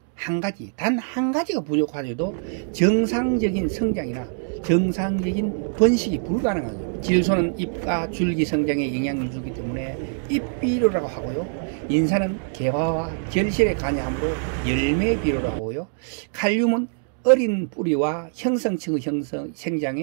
한 가지가 부족하여도 정상적인 성장이나 정상적인 번식이 불가능하죠. 질소는 잎과 줄기 성장에 영향을 주기 때문에 잎비료라고 하고요. 인산은 개화와 결실에 관여하므로 열매 비료라고 하고요. 칼륨은 어린 뿌리와 형성층의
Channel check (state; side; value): silent; left; digital silence